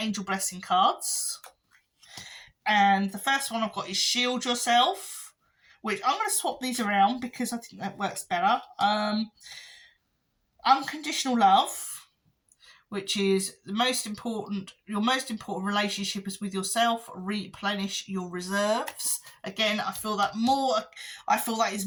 blessing cards. And the first one I've got is Shield Yourself, which I'm going to swap these around because I think that works better. Unconditional Love, which is your most important relationship is with yourself. Replenish your reserves. Again, I feel that is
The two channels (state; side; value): identical; both; correlation 1.00